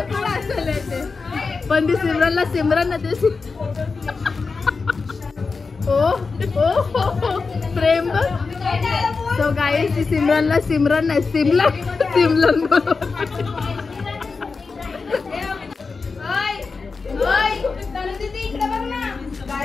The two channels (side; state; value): right; quieter; 4.5 dB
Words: थोडं असेल ते, पण ती सिमरनला सिमरन ना ते ओ प्रेम. सो गाईस ती सिमरनला सिमरन नाही सिमलन